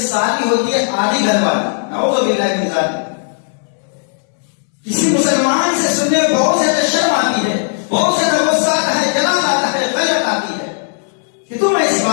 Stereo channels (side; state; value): right; silent; 66 dB below the other